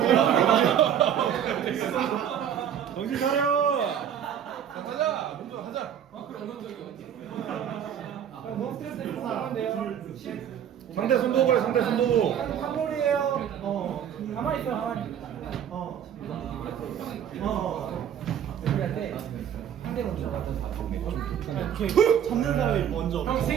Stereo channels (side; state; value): left; quieter; 9.3 dB